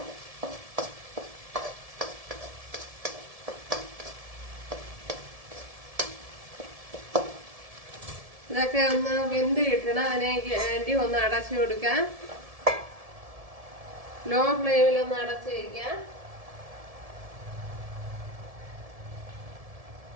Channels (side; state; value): left; late; 1.7 ms